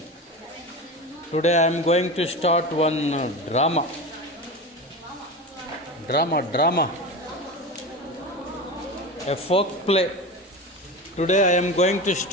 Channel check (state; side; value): normal; both; correlation 0.26